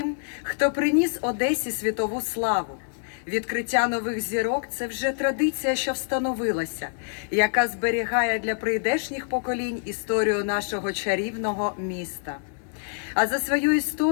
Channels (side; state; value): right; silent; digital silence